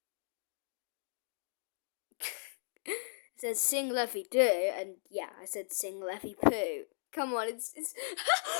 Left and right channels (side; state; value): right; silent; digital silence